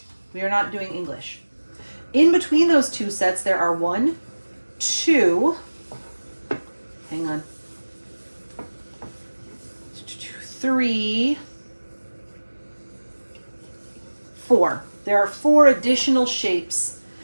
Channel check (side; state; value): both; inverted; correlation -1.00